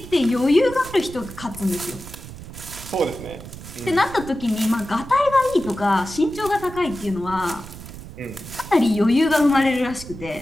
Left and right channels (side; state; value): right; noise; rumble, 14 dB below the sound